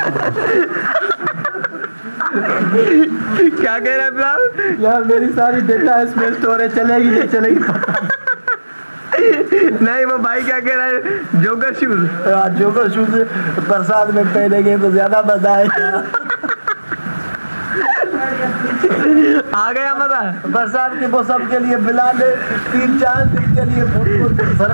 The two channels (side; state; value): both; inverted; correlation -1.00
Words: क्या कह रहा है बिलाल? यार मेरी सारी डेटा स्पेस स्टोरेज चलेगी नहीं चलेगी नहीं, वो भाई क्या कह रहा है? जोकर शूज, जोकर शूज बरसात में पहनेंगे तो ज्यादा मजा आएगा। आ गया मजा। बरसात के मौसम के लिए बिलाल ने 3-4 दिन के लिए फुट को